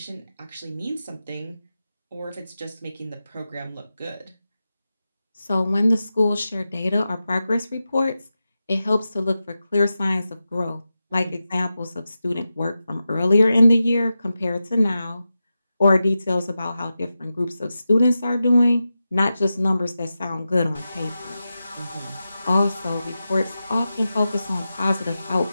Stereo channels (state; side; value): inverted; both; correlation -0.92